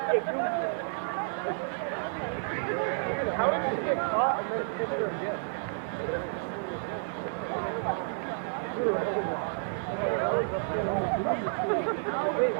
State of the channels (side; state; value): left; silent; 57 dB below the other